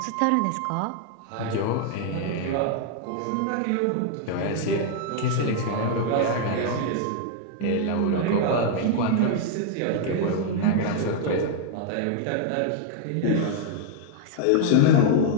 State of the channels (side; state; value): both; different; correlation 0.00